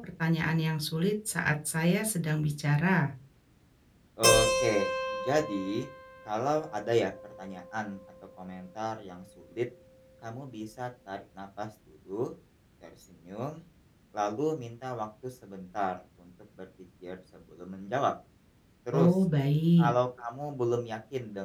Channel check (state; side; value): identical; both; correlation 1.00